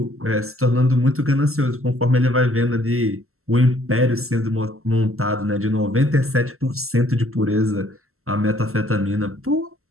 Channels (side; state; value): left; late; 0.62 ms